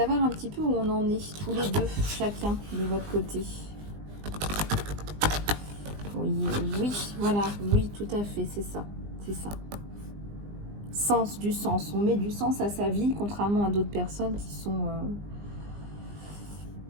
un petit peu où on en est, tous les deux, chacun de votre côté. Oui, oui, voilà, oui, tout à fait, c'est ça, c'est ça. Sens, du sens, on met du sens à sa vie, contrairement à d'autres personnes qui sont...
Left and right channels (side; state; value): left; late; 20 ms